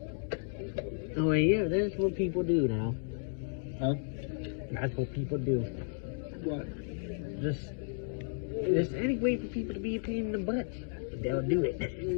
Oh yeah, that's what people do now. Huh? That's what people do. What? Just any way for people to be a pain in the butt, they'll do it.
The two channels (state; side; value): silent; right; digital silence